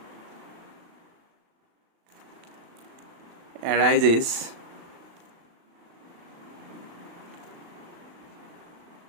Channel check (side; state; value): left; late; 36 ms